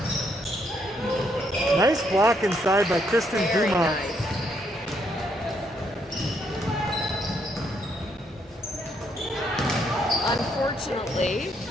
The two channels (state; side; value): normal; both; correlation 0.73